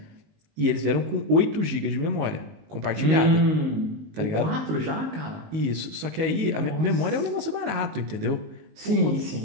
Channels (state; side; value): late; left; 19 ms